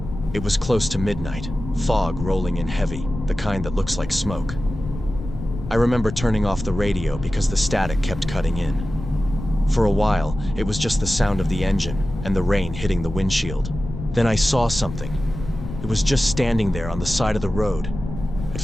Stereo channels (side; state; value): left; noise; rumble, 9 dB below the sound